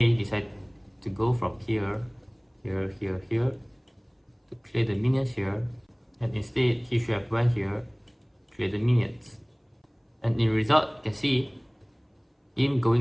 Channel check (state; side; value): identical; both; correlation 1.00